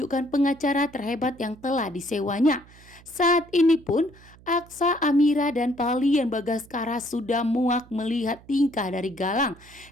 pengacara terhebat yang telah disewanya. Saat ini pun Aksa, Amira dan Pak Lian Bagaskara sudah muak melihat tingkah dari Galang,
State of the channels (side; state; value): right; noise; hum, 24 dB below the sound